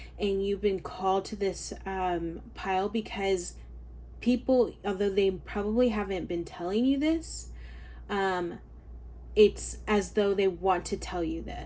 And you've been called to this pile because people, although they probably haven't been telling you this, it's as though they want to tell you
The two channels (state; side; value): identical; both; correlation 1.00